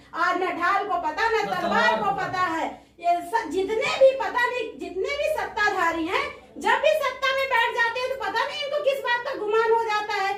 आज न ढाल को पता न तलवार को पता है। ये जितने भी पता नहीं, जितने भी सत्ताधारी हैं, जब भी सत्ता में बैठ जाते हैं तो पता नहीं इनको किस बात का गुमान हो जाता है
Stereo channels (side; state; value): both; identical; correlation 1.00